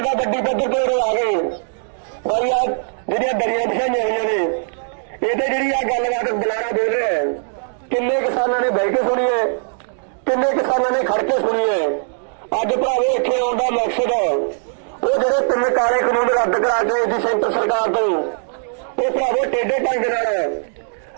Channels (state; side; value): silent; left; digital silence